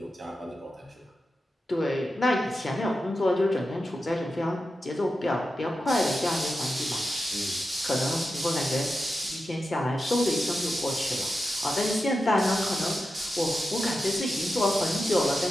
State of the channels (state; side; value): normal; both; correlation 0.91